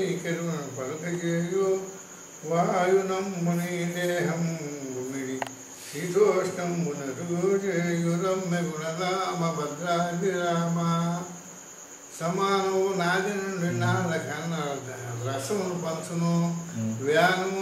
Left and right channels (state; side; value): identical; both; correlation 1.00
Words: కరుణ పలుక చేయు వాయునమ్ముని దేహం గుమిడి శీతోష్ణంబునరు చేయు రమ్య గుణరామ భద్రాది రామ సమానము నాది నుండి నాద కన్నా రసమును పంచును వ్యానము